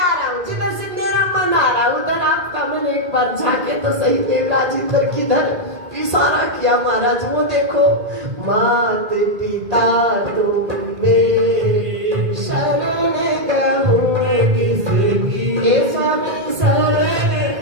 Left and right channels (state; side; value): late; left; 1.8 ms